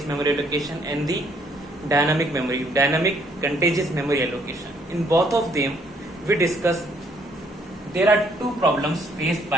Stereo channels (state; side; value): normal; both; correlation 0.67